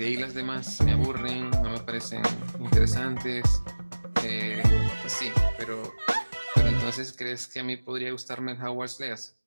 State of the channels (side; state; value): both; inverted; correlation -1.00